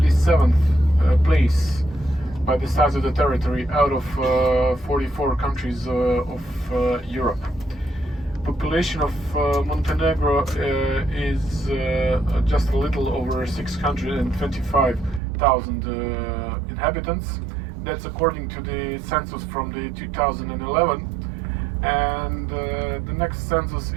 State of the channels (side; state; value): left; drops out; at 15.2 s